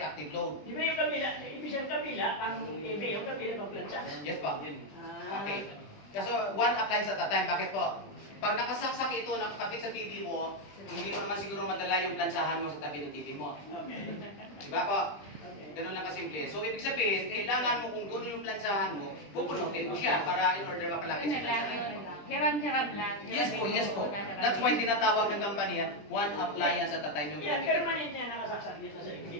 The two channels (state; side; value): late; right; 20 ms